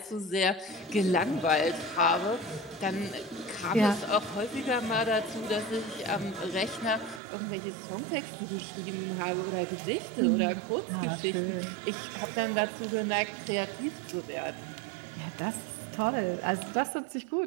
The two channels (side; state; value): left; drops out; at 7.2 s